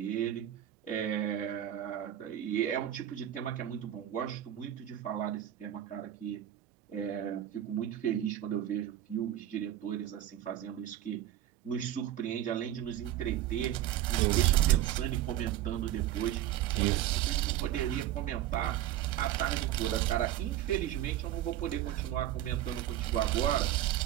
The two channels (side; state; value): left; quieter; 12.3 dB